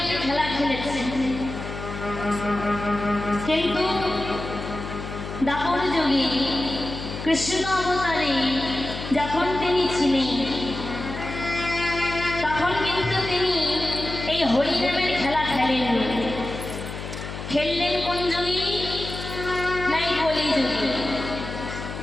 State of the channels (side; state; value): left; noise; hum, 8 dB below the sound